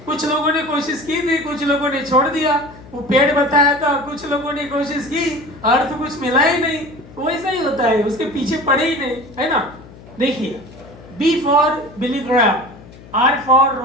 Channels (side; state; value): left; noise; hum, 20 dB below the sound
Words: कुछ लोगों ने कोशिश की थी, कुछ लोगों ने छोड़ दिया। वो पेड़ बताया था, कुछ लोगों ने कोशिश की, अर्थ कुछ मिला ही नहीं। वैसा ही होता है, उसके पीछे पड़े ही नहीं, है ना। देखिए, B for Billy Graham, R for